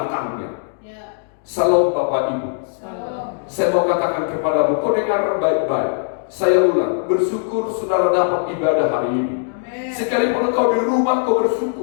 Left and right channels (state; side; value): silent; right; digital silence